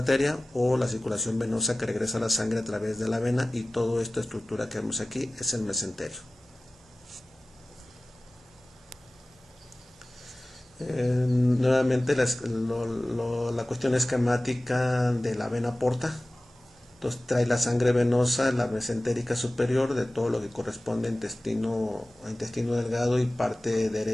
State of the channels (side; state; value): both; normal; correlation 0.97